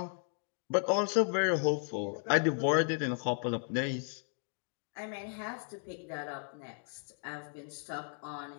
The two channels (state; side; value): silent; right; 55 dB below the other